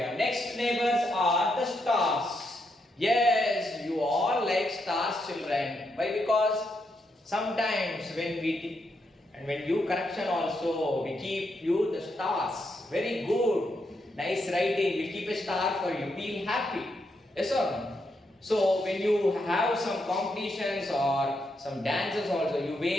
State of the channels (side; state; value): both; normal; correlation 0.80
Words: Next neighbors are the stars. Yes, you all like stars, children. Why? Because sometimes when we and when you correction also, we keep you the stars. Very good. Nice writing. We keep a star for you. Feel happy. Yes or no? So when you have some competitions or some dances also, you